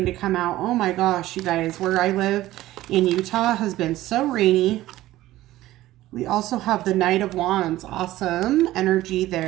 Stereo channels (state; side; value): quieter; left; 15.7 dB